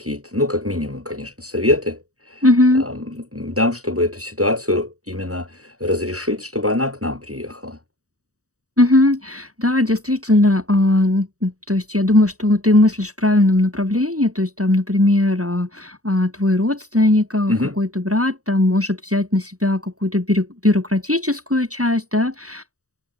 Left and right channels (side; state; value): left; late; 0.66 ms